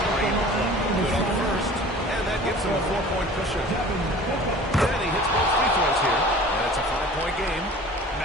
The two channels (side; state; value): both; normal; correlation 0.44